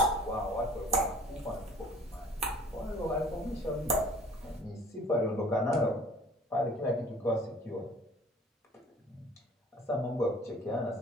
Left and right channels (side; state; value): both; normal; correlation 0.50